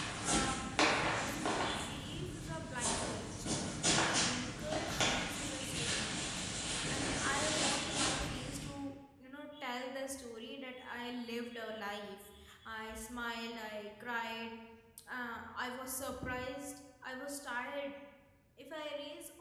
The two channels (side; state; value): both; identical; correlation 1.00